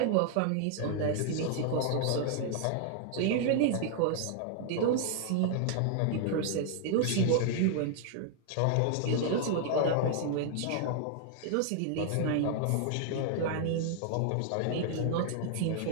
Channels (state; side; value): different; both; correlation 0.00